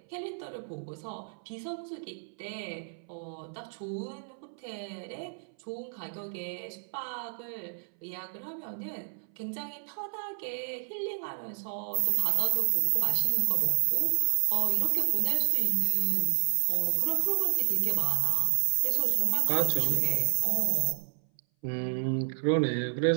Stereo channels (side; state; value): left; silent; 58 dB below the other